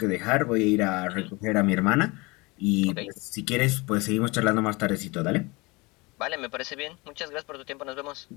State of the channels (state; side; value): quieter; right; 25.0 dB